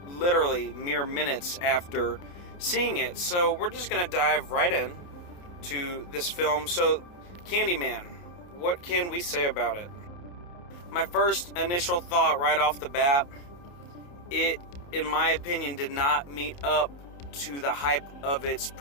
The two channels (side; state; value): right; late; 28 ms